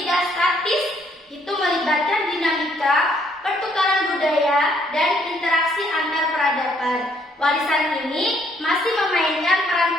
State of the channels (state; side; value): normal; both; correlation 0.68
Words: tidak statis, itu melibatkan dinamika, pertukaran budaya, dan interaksi antar peradaban. Warisan ini masih memainkan peran